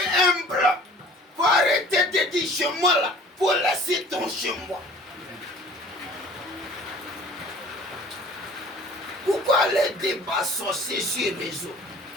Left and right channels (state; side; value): normal; both; correlation 0.48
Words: humble. Faut arrêter de dire chez moi là, faut laisser ton chez moi. Pourquoi les débats sorciers sur les réseaux?